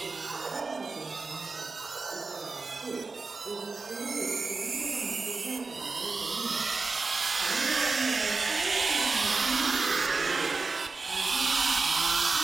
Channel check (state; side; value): quieter; left; 4.0 dB